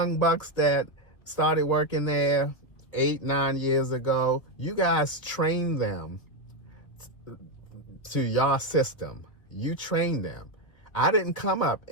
bucks that started working there 8, 9 years ago, you guys trained them to your system. You trained them. I didn't come up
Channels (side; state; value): right; late; 2.3 ms